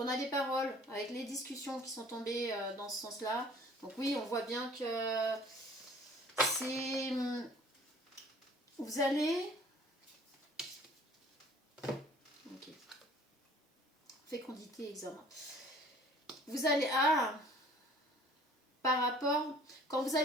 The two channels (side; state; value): both; normal; correlation 0.52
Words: a des paroles avec les discussions qui sont tombées dans ce sens-là. Donc oui, on voit bien que c'est... Vous allez... Ok. Fécondité, examen. Vous allez... par rapport, quand vous